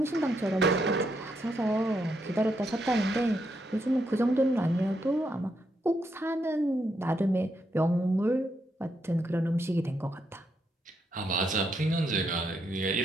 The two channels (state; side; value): normal; both; correlation 0.79